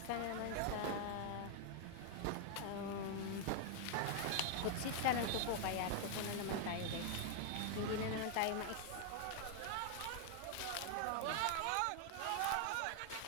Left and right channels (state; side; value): different; both; correlation 0.00